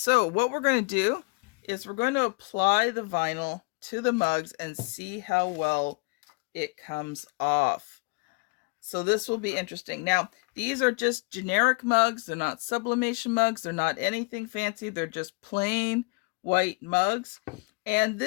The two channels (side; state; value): right; quieter; 29.0 dB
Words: what we're going to do is we're going to apply the vinyl to the mugs and see how well it comes off. So this will be interesting. Now, these are just generic mugs. They're not sublimation mugs. They're not anything fancy. They're just plain white mugs. And